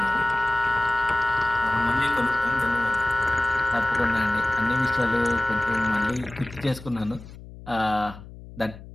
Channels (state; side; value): noise; left; hum, 16 dB below the sound